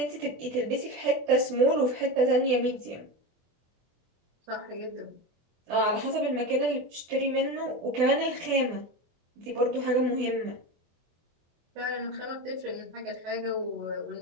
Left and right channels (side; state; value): left; late; 24 ms